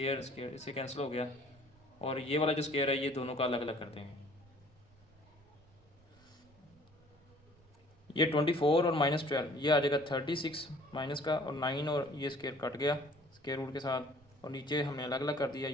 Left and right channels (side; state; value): right; noise; rumble, 29 dB below the sound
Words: इससे कैंसिल हो गया और ये वाला जो स्क्वायर है ये दोनों का अलग अलग कर देंगे। ये 24 और -12 ये आ जाएगा 36 माइनस का, और 9 और ये स्क्वायर कट गया स्क्वायर रूट के साथ, और नीचे हमने अलग अलग कर दिया,